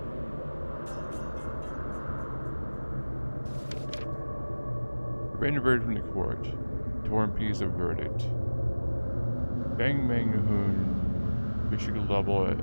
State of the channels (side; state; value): both; inverted; correlation -1.00